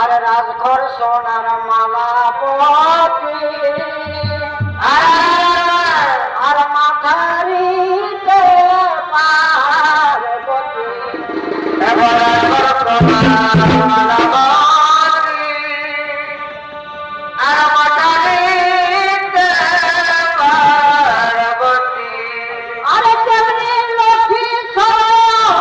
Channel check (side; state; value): both; identical; correlation 1.00